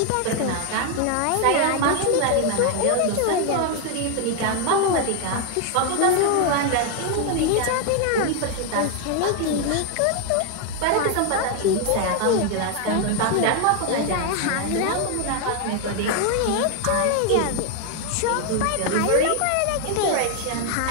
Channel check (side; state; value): both; different; correlation 0.00